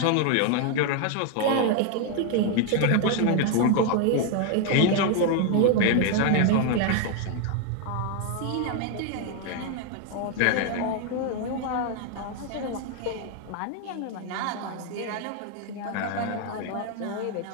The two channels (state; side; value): different; both; correlation 0.01